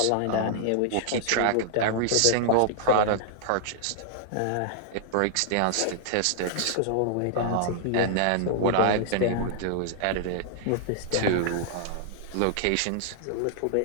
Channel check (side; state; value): both; different; correlation -0.01